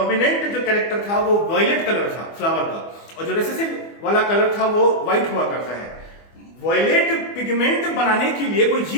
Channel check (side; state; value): right; late; 24 ms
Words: जो कैरेक्टर था वो वायलेट कलर था फ्लावर का, और जो रिसेसिव वाला कलर था वो व्हाइट हुआ करता है। वायलेट पिगमेंट बनाने के लिए कोई